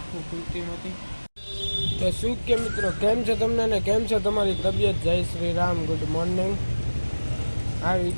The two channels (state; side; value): inverted; both; correlation -1.00